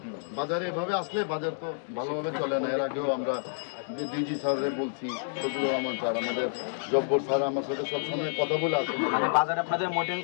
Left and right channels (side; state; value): right; silent; digital silence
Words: বাজারে এভাবে আসলে বাজার তো ভালোভাবে চলে না। এর আগেও আমরা ডিজি স্যাররে বলছি, শফিকুর রহমান স্যার, আমাদের জব্বর স্যার আমার সাথে সবসময় কথা বলে আসেন। মানে বাজারে আপনাদের মনিটরিং